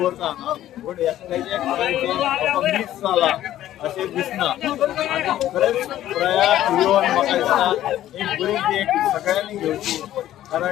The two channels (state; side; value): quieter; right; 13.0 dB